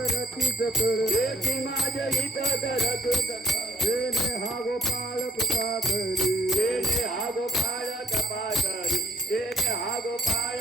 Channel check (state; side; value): normal; both; correlation 0.62